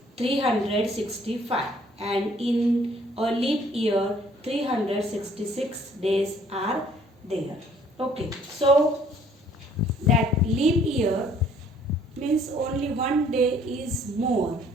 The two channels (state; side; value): normal; both; correlation 0.60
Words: 365. And in a leap year, 366 days are there. Okay, so that leap year means only one day is more.